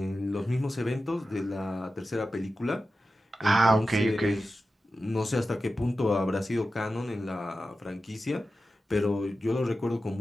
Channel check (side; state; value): both; normal; correlation 0.93